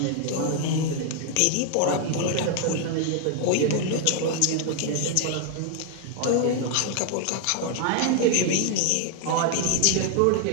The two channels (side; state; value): both; different; correlation 0.00